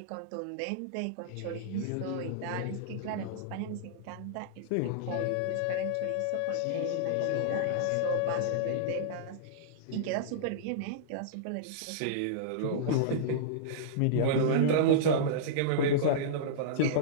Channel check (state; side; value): different; both; correlation -0.03